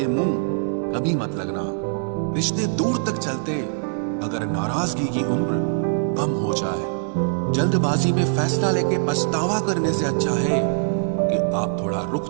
मुंह कभी मत लगना। रिश्ते दूर तक चलते अगर नाराजगी की उम्र कम हो जाए। जल्दबाजी में फैसला लेके पछतावा करने से अच्छा है कि आप थोड़ा रुक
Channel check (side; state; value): left; silent; digital silence